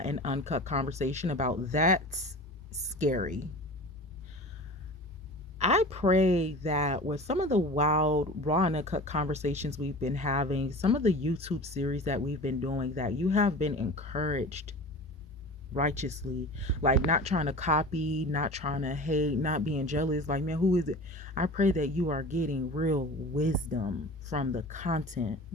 and uncut conversation about That's Scary. I pray that with some of the wild, raw, and uncut conversations we've been having, some of the YouTube series that we've been doing, that you have been encouraged righteously, like not trying to copy, not trying to hate, not being jealous. Like, man, who is it? I pray that you are getting real wisdom from the content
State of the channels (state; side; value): normal; both; correlation 0.37